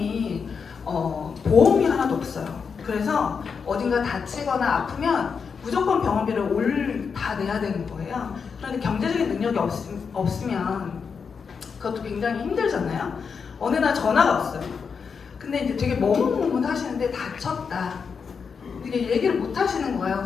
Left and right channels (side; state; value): right; quieter; 5.9 dB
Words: 보험이 하나도 없어요. 그래서 어딘가 다치거나 아프면 무조건 병원비를 다 내야 되는 거예요. 그런데 경제적인 능력이 없으면 그것도 굉장히 힘들잖아요. 어느 날 전화가 왔어요. 근데 이제 되게 머뭇머뭇 하시는데 다쳤다. 이게 얘기를 못 하시는 거예요.